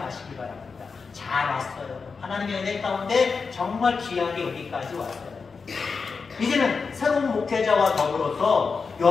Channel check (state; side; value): quieter; right; 5.0 dB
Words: 바랍니다. 잘 왔어요. 하나님의 은혜 가운데 정말 귀하게 여기까지 왔어요. 이제는 새로운 목회자와 더불어서